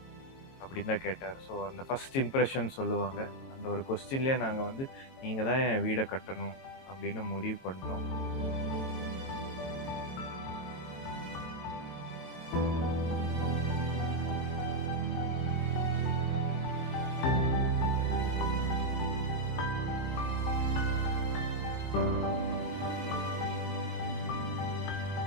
அப்படின்னு தான் கேட்டார். ஸோ அந்த ஃபஸ்ட் இம்ப்ரெஷன் சொல்லுவாங்க. அந்த ஒரு கொஸ்டின்லேயே நாங்கள் வந்து நீங்கள் தான் என் வீடை கட்டணும் அப்படின்னு முடிவு பண்ணிட்டோம்.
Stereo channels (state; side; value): late; right; 22 ms